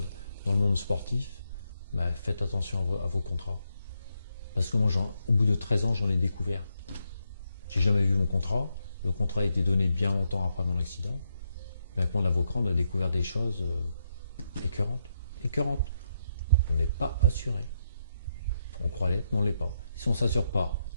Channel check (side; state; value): both; inverted; correlation -0.80